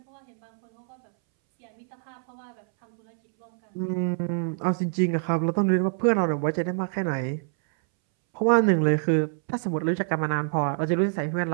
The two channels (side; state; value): left; silent; 61 dB below the other